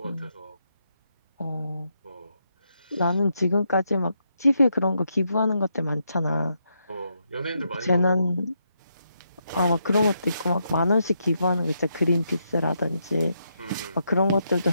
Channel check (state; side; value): inverted; both; correlation -0.80